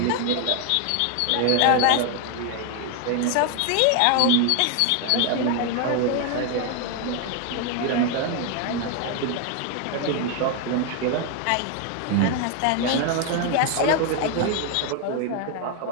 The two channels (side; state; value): both; different; correlation 0.01